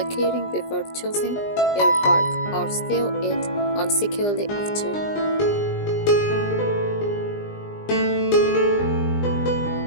keyring before choosing your work or sew it on securely after.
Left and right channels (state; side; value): late; right; 20 ms